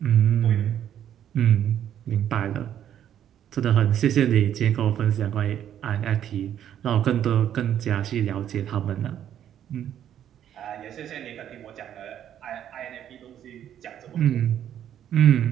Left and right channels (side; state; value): left; quieter; 10.3 dB